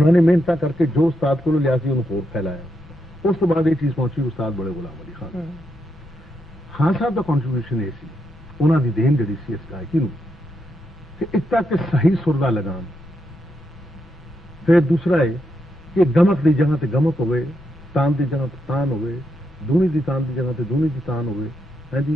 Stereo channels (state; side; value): noise; left; rumble, 23 dB below the sound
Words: मेहनत करके जो उस्ताद को लिया उन्होंने होर फैलाया। उस तो बाद ये चीज पहुंची उस्ताद बड़े गुलाम अली खान साहब का कॉन्ट्रीब्यूशन ये सी, उन्होंने देन जी सी इस गायकी नूं कि एक तक सही सुर दा लगाम, फिर दूसरा है कि गमक की जगह ते गमक होवे, तान की जगह ते तान होवे, दूनी की तान की जगह ते दूनी की तान होवे, है